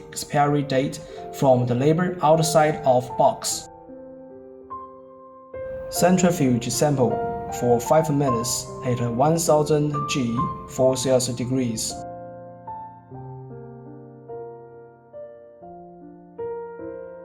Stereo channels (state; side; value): identical; both; correlation 1.00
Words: expiry date from the label outside of box. Centrifuge sample for 5 minutes at 1000 G for Celsius degrees.